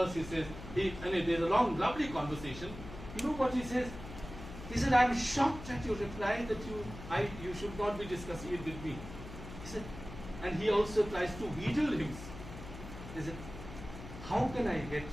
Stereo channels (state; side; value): noise; left; hum, 12 dB below the sound